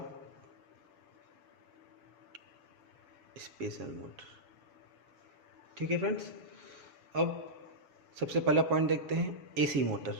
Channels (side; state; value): left; late; 7.3 ms